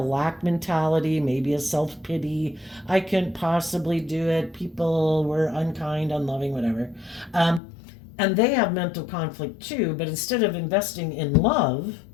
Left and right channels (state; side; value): drops out; right; at 7.6 s